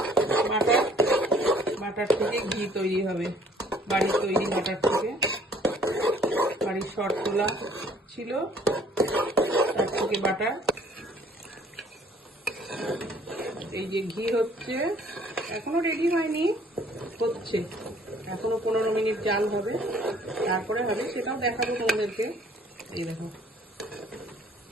বাটার থেকে ঘি তৈরি হবে, বাড়ির তৈরি বাটার থেকে। বাড়ির শর্ট তোলা ছিল, তার থেকে বাটার। এই যে ঘি হচ্ছে, এখনো রেডি হয়নি, হচ্ছে এখনো 15 মিনিট জাল হবে, তারপরে হবে, সেটাও দেখাবো তোমাদেরকে। এই দেখো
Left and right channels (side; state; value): both; normal; correlation 0.57